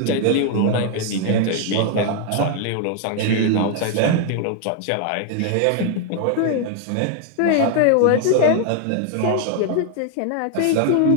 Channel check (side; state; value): both; different; correlation 0.00